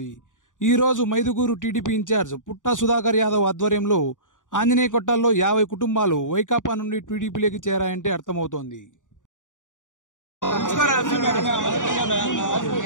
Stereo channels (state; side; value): late; right; 0.87 ms